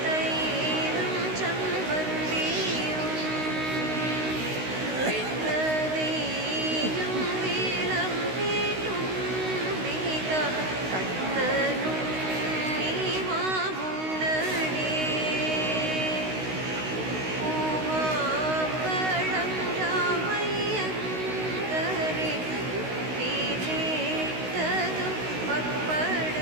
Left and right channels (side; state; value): left; late; 16 ms